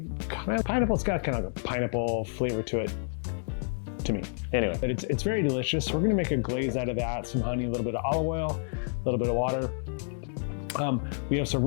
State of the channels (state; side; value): silent; right; digital silence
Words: kind of pineapple. It's got kind of a pineapple flavor to it, to me. Anyway, but it's very delicious. We're going to make a glaze out of that, some honey, a little bit of olive oil, a little bit of water. We have some